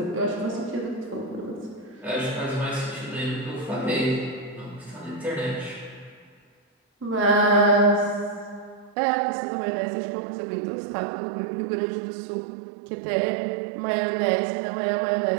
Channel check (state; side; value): drops out; left; at 9.0 s